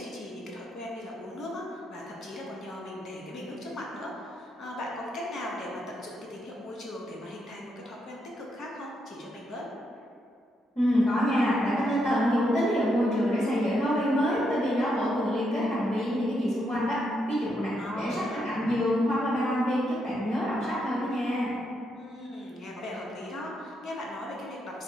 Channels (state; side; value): normal; both; correlation 0.79